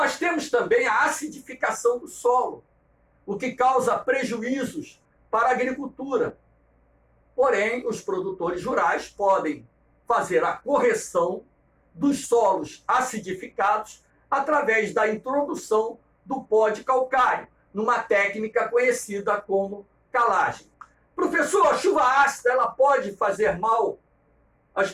temos também a acidificação do solo, o que causa prejuízos para a agricultura. Porém, os produtores rurais podem fazer a correção dos solos acidificados através da introdução do pó de calcário, numa técnica conhecida como calagem. Professor, a chuva ácida, ela pode fazer mal às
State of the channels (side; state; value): both; identical; correlation 1.00